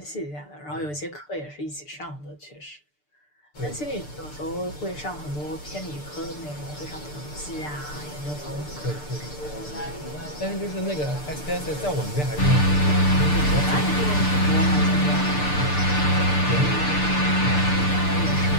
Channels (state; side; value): late; right; 6.8 ms